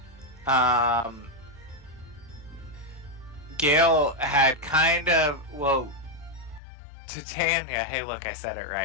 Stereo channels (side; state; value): right; drops out; at 6.6 s